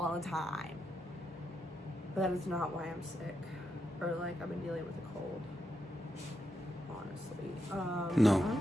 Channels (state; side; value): normal; both; correlation 0.83